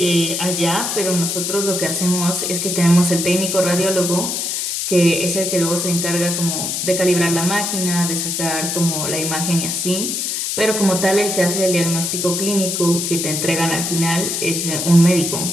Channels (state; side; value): noise; left; hiss, 1 dB below the sound